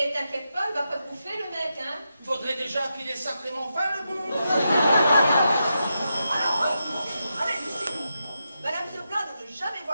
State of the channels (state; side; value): inverted; both; correlation -0.86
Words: t'inquiète pas, il va pas te bouffer, le mec, hein. Faudrait déjà qu'il ait sacrément faim, le bon. Allez, Lucie. Madame se plaint de ne jamais